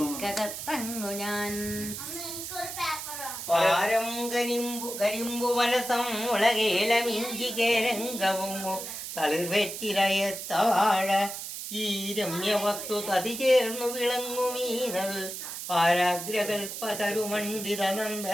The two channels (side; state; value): right; noise; hiss, 7 dB below the sound